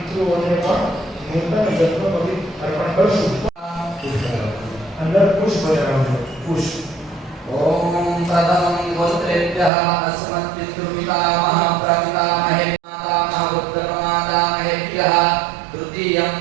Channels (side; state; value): left; drops out; at 9.7 s